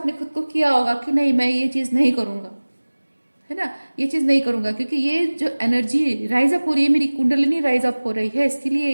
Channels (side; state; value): both; inverted; correlation -1.00